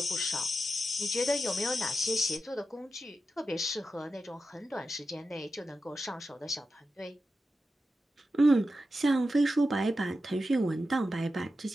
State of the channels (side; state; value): both; normal; correlation 0.91